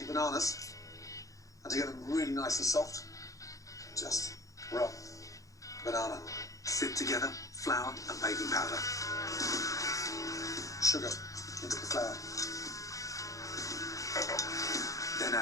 bananas, and to get them really nice and soft, just rub banana. Sift together flour and baking powder. Sugar into the flour. Then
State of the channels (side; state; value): right; late; 0.16 ms